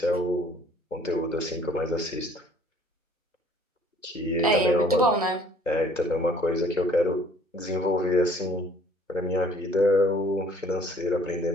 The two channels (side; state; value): both; normal; correlation 0.56